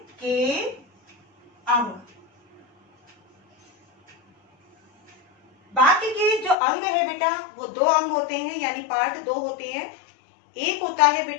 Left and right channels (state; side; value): drops out; right; at 6.6 s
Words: अंग, वाक्य के जो अंग है बेटा वो दो अंग होते हैं, यानी पार्ट दो होते हैं। एक होता है